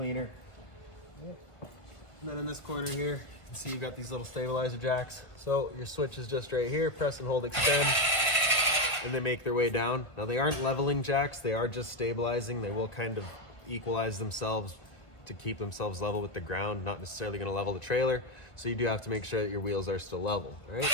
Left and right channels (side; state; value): right; late; 1.2 ms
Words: And then in this corner here, you can see you've got these little stabilizer jacks. So your switch is just right here, press and hold extend, and they make their way down. Now they aren't leveling jacks, they are just stabilizing. They will kind of equalize themselves to keep themselves level with the ground, not necessarily gonna level the trailer. So you do have to make sure that your wheels are still level, all right?